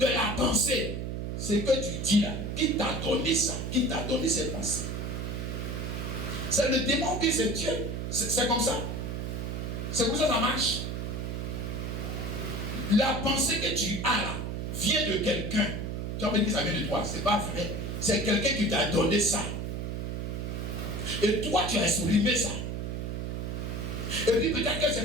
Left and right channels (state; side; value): noise; right; hum, 3 dB below the sound